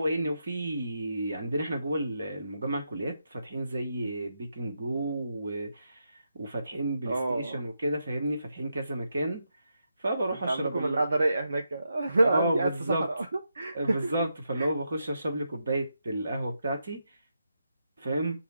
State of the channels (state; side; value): inverted; both; correlation -0.84